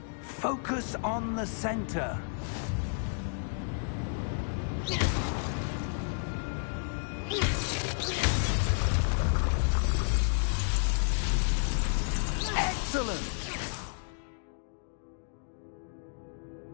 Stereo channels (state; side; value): silent; right; digital silence